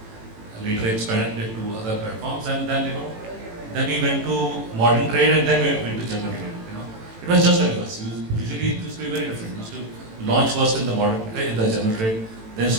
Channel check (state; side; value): late; left; 18 ms